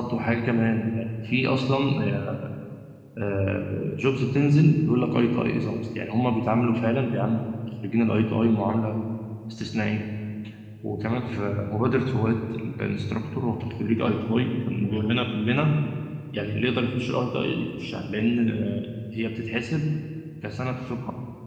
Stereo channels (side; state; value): both; identical; correlation 1.00